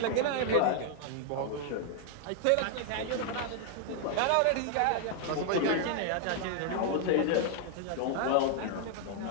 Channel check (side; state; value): both; different; correlation 0.00